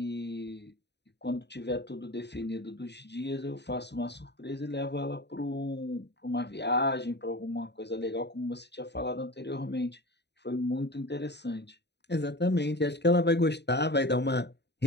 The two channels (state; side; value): late; right; 0.50 ms